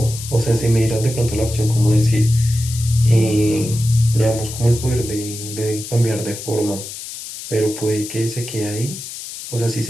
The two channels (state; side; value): noise; left; hiss, 10 dB below the sound